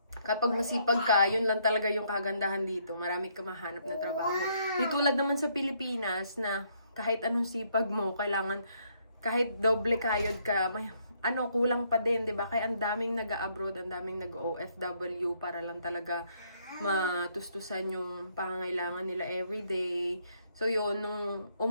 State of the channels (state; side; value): inverted; both; correlation -0.71